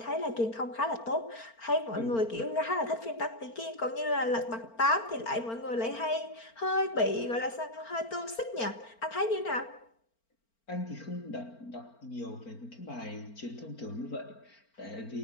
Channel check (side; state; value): right; late; 4.4 ms